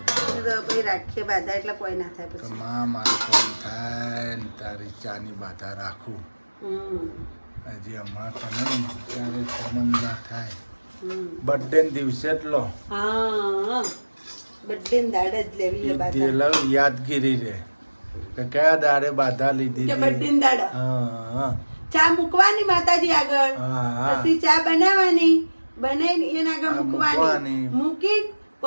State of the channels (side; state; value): both; inverted; correlation -1.00